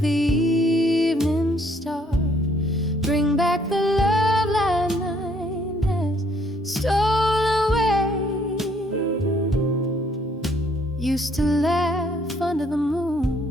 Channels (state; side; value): normal; both; correlation 0.66